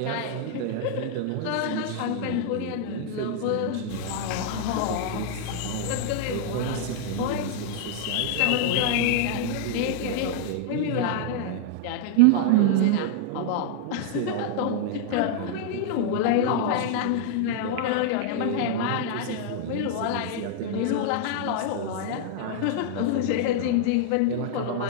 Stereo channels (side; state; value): both; different; correlation -0.01